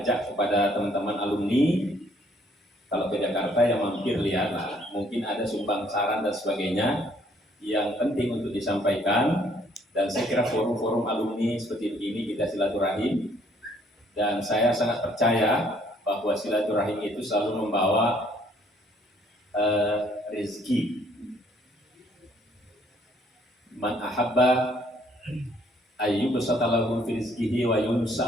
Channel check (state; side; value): normal; both; correlation 0.64